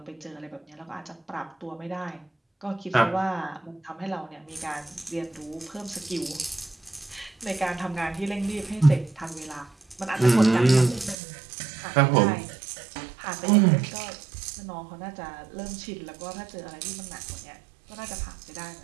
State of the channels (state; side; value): drops out; left; at 11.2 s